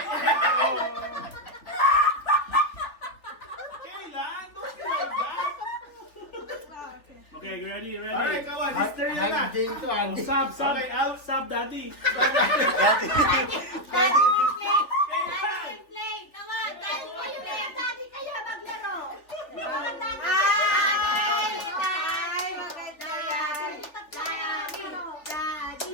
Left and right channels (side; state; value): right; late; 3.4 ms